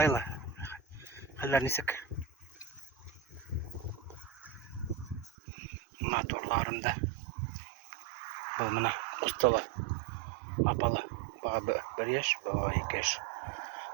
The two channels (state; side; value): drops out; left; at 5.4 s